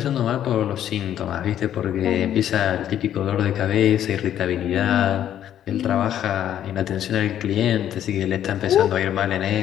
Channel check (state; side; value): quieter; right; 10.7 dB